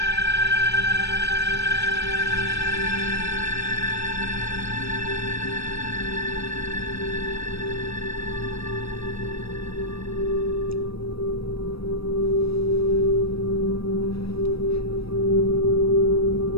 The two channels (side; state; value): right; late; 0.77 ms